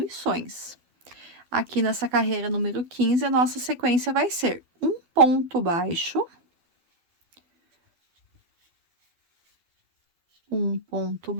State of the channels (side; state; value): left; late; 12 ms